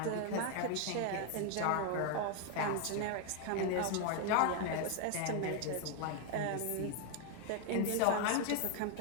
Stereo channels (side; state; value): both; different; correlation 0.01